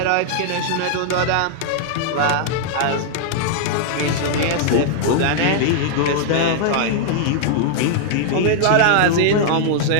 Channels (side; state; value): both; different; correlation -0.01